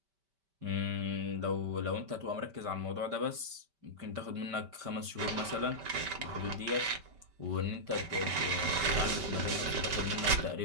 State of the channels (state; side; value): late; left; 5.1 ms